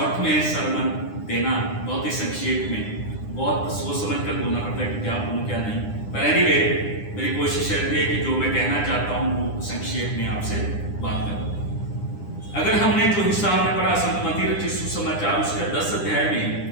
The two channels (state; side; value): late; right; 9.9 ms